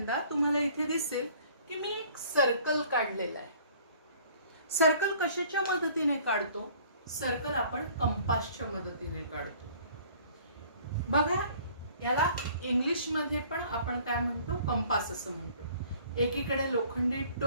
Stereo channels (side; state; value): both; inverted; correlation -0.54